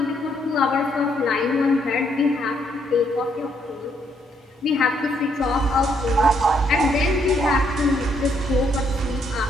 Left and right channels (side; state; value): both; normal; correlation 0.72